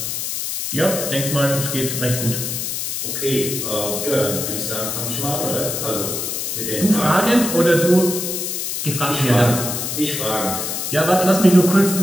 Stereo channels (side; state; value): left; noise; hiss, 3 dB below the sound